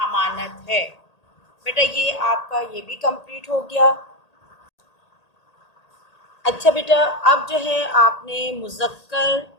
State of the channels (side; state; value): right; late; 1.8 ms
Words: ہے۔ بیٹا یہ آپ کا یہ بھی کمپلیٹ ہو گیا۔ اچھا بیٹا اب جو ہے آپ نے مذکر